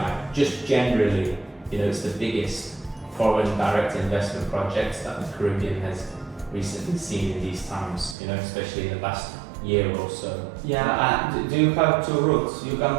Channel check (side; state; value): left; drops out; at 8.2 s